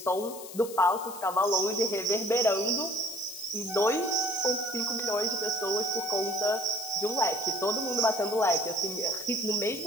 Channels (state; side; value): noise; left; hiss, 13 dB below the sound